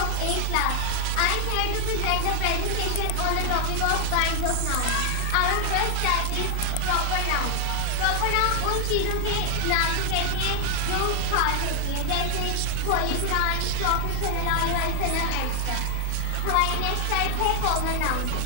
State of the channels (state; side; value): different; both; correlation 0.00